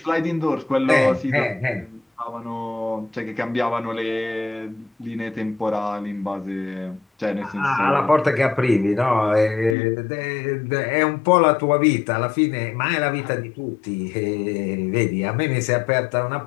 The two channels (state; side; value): drops out; right; at 9.8 s